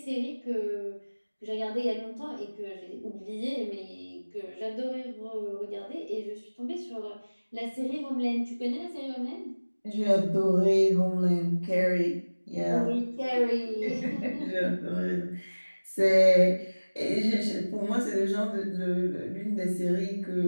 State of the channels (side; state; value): both; inverted; correlation -1.00